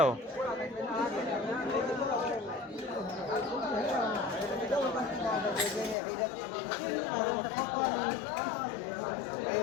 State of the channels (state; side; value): drops out; right; at 6.0 s